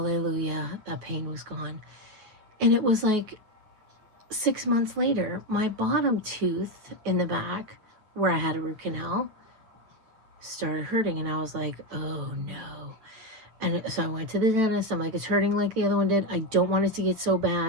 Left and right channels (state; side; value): late; left; 9.3 ms